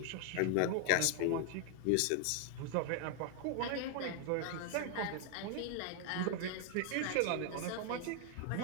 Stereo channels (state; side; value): different; both; correlation 0.00